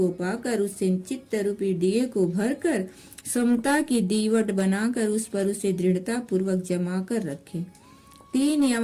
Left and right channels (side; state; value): both; identical; correlation 1.00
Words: पाकर उससे चित्त रूपी दिए को भरकर समता की दीवट बनाकर उस पर उसे दृढ़ता पूर्वक जमा कर रखे। तीन